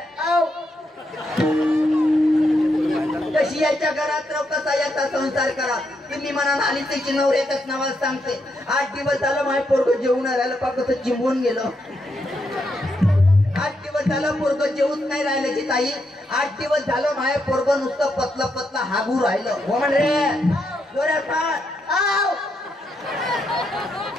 कशी याच्या घरात राहू, कसा याचा संसार करा. तुम्ही म्हणा आली त्याची नवऱ्याच्याच नावाला सांगते. 8 दिवस झालं माझे पोरग जेवून राहिलं, पा कसं चिंबून गेलं. 8 दिवस झालं पोरग जेवूच नाही राहिलं जी ताई. 8 दिवस झालं माझे पोरग नुसतं पतलं पतलं हागू राहिलं. हो म्हणजे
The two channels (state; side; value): normal; both; correlation 0.80